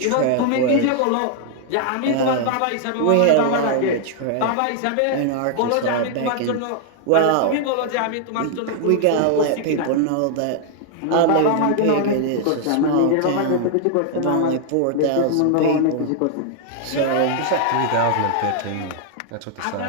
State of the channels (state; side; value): different; both; correlation 0.00